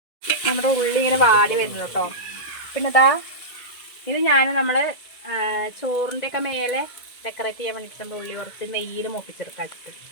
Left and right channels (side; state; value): right; late; 2.0 ms